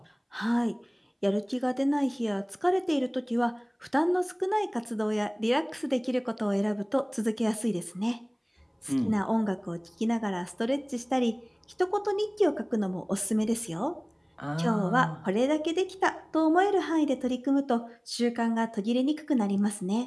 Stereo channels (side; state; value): both; identical; correlation 1.00